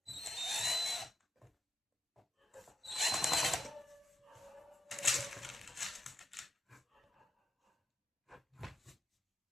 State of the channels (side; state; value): both; normal; correlation 0.87